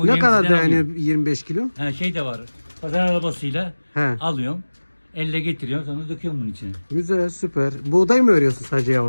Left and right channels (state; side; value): inverted; both; correlation -1.00